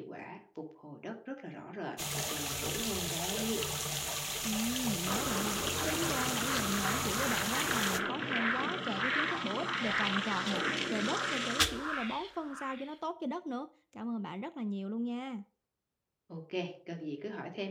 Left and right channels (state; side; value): identical; both; correlation 1.00